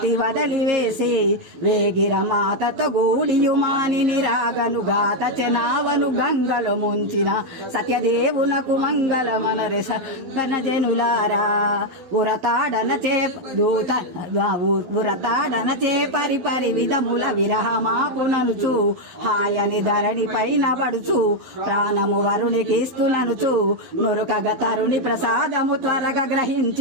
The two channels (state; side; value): late; left; 12 ms